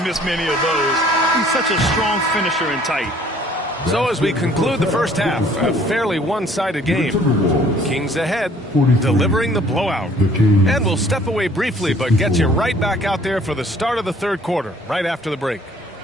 miss many of those. He's such a strong finisher and tight. So as we conclude the first half, a fairly one-sided game. Kings ahead, delivering the blowout. And we'll step away briefly, but get you right back out there for the start of the third quarter, right after the break.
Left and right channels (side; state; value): both; normal; correlation 0.57